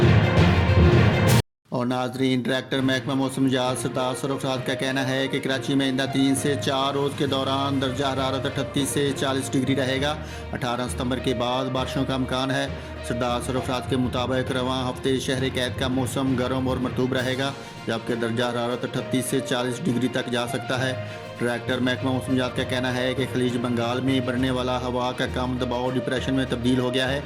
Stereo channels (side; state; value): both; identical; correlation 1.00